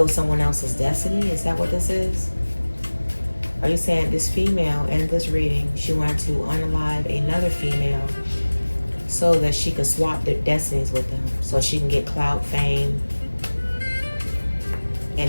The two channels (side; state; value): both; inverted; correlation -1.00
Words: someone else's destiny? Is that what this is? Are you saying this female in this reading, she wanted to unalive another female so that she could swap their destinies with them, so she can get clout, fame,